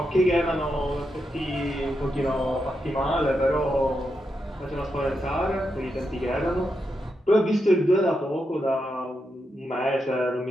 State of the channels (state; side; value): normal; both; correlation 0.85